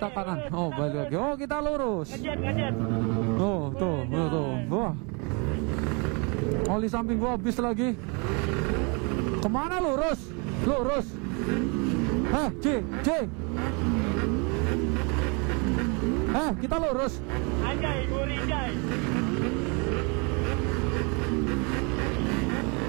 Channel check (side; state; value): left; quieter; 32.4 dB